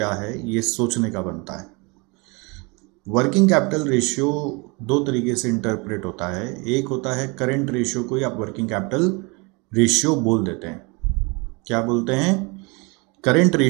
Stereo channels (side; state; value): left; quieter; 28.9 dB